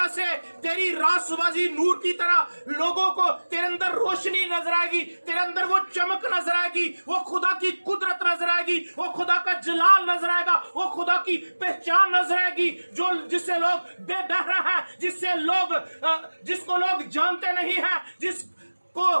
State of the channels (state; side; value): inverted; both; correlation -1.00